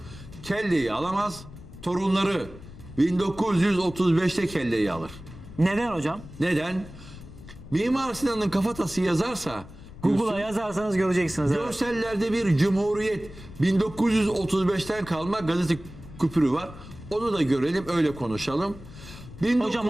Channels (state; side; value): noise; left; rumble, 16 dB below the sound